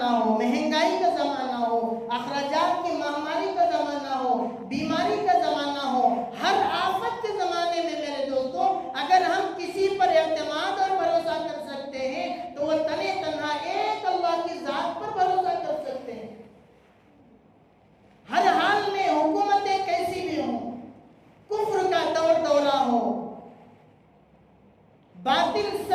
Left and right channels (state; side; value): identical; both; correlation 1.00